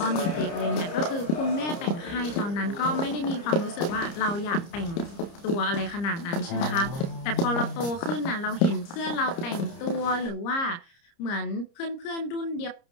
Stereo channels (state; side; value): late; right; 30 ms